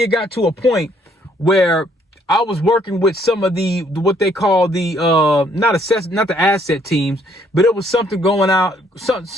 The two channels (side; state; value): both; normal; correlation 0.66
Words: it got to a point where I was working with some of the, what they call the, not the asset teams, but it was something going out.